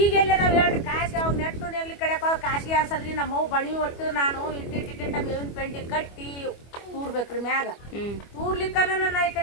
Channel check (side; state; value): right; late; 25 ms